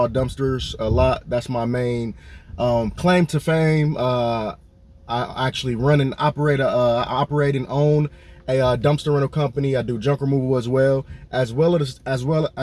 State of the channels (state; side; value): identical; both; correlation 1.00